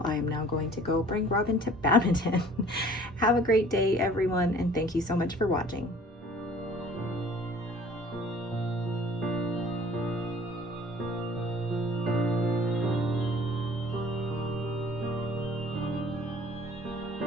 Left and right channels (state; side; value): normal; both; correlation 0.51